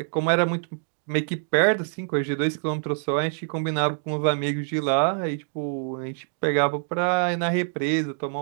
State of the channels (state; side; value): silent; left; digital silence